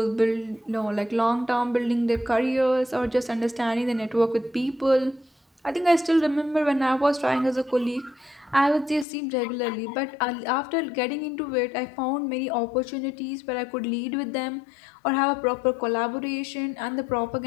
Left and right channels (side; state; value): right; drops out; at 9.1 s